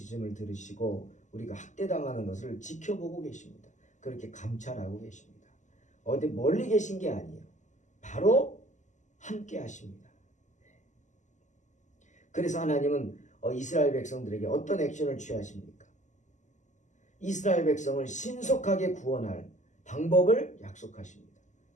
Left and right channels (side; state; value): right; late; 0.35 ms